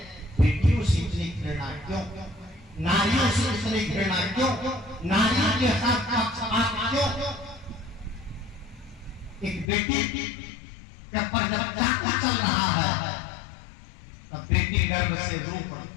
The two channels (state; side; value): drops out; right; at 9.7 s